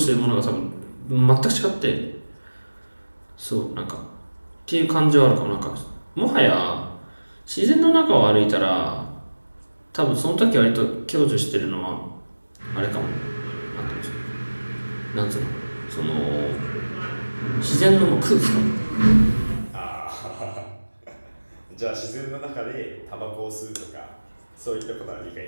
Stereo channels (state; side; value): inverted; both; correlation -1.00